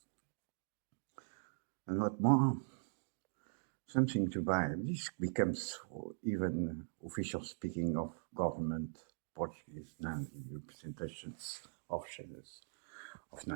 And what more? Something to buy. This becomes even official speaking of government Portuguese Nazi representations of shadows of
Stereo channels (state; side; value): silent; left; digital silence